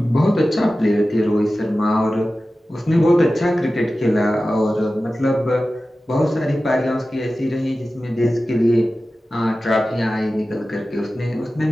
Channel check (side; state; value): both; normal; correlation 0.95